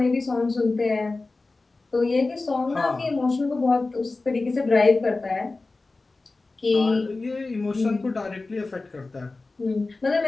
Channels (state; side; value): quieter; right; 3.5 dB